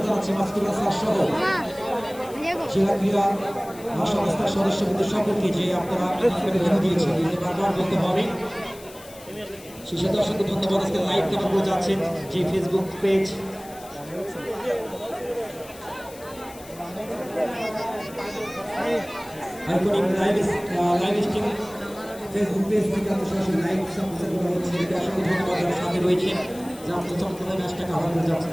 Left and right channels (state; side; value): noise; left; hiss, 19 dB below the sound